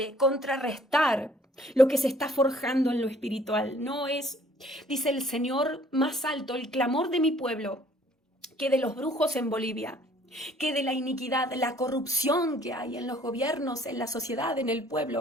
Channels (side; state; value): both; normal; correlation 0.59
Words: contrarrestar lo que se está forjando en lo espiritual. No es, dice el Señor, más alto el clamor de mi pueblo que de los brujos en Bolivia, que de la iniquidad, la corrupción que hay en los gobiernos, en la sociedad, en el